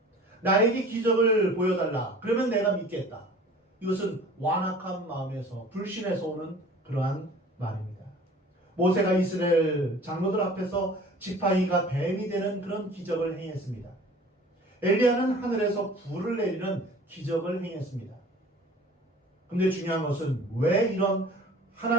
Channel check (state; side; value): normal; both; correlation 0.46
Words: 나에게 기적을 보여달라. 그러면 내가 믿겠다. 이것은 완악한 마음에서 불신에서 오는 그러한 말입니다. 모세가 이스라엘 장로들 앞에서 지팡이가 뱀이 되는 그런 기적을 행했습니다. 엘리야는 하늘에서 불을 내리는 기적을 행했습니다. 근데 중요한 것은 왜 이런